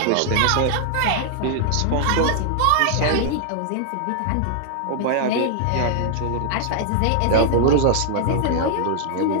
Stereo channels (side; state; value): both; different; correlation 0.00